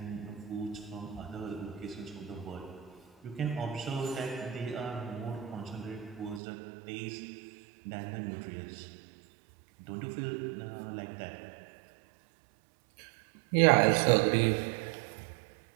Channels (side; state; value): left; drops out; at 6.4 s